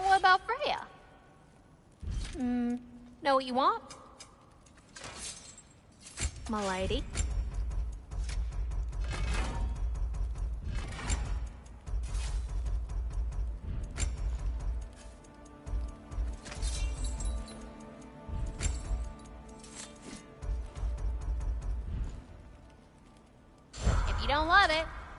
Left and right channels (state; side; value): identical; both; correlation 1.00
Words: what about Freya? Know what you want? My lady? don't love it,